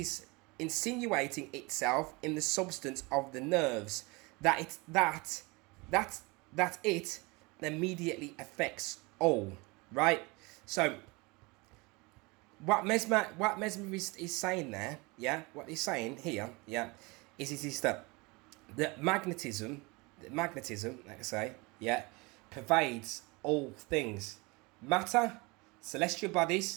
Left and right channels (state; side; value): quieter; left; 26.0 dB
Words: insinuating itself in the substance of the nerves that it immediately affects all, right? So what Mesmer is saying there, yeah, what he's saying here, yeah, is that the magnetism, like I say, yeah, pervades all things, matter, celestial